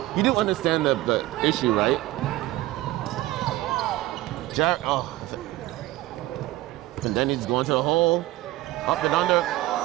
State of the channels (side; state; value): left; quieter; 17.2 dB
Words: you do understand the issue, right? And then he's going to the hole, up and under.